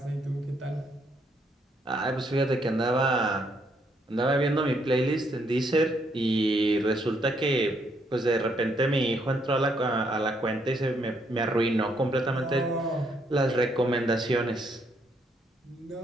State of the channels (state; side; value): normal; both; correlation 0.72